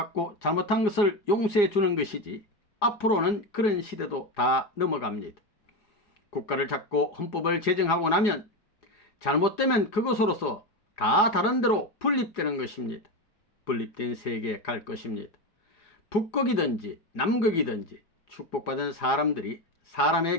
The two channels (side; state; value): right; late; 4.8 ms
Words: 잘못한 것을 용서해 주는 것이지 앞으로는 그런 시대도 다 넘어갑니다. 국가를 잡고 헌법을 제정하고 나면 잘못되면 그것으로서 다 다른 데로 분립되는 것입니다. 분립된 세계에 갈 것입니다. 북극이든지 남극이든지 축복받은 사람들이